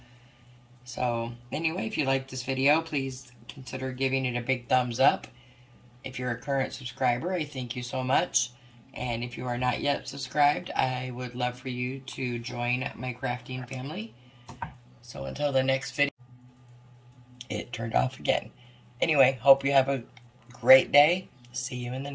So anyway, if you like this video, please consider giving it a big thumbs up. If you're a current subscriber, I thank you so much. And if you are not yet subscribed, I would love for you to join my crafting family. So until the next video, it turned off again. Anyway, hope you have a great day. See you in the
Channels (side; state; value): both; identical; correlation 1.00